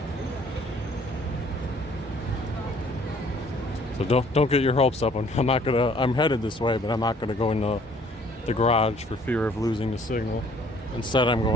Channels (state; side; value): normal; both; correlation 0.58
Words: So don't get your hopes up. I'm headed this way, but I'm not gonna go into the garage for fear of losing the signal. Instead, I'm